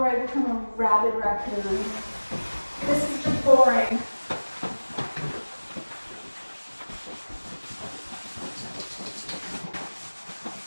I become a rabid raccoon. This is just boring.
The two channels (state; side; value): inverted; both; correlation -1.00